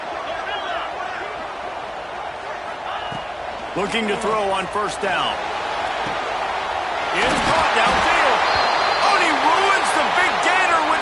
Looking to throw on 1st down. It's caught downfield. Oh, and he ruins the big gator with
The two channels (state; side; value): identical; both; correlation 1.00